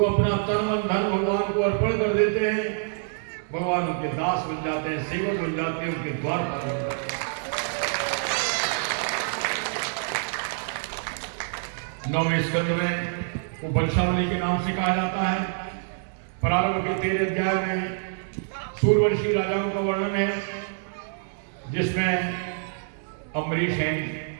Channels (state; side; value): silent; left; digital silence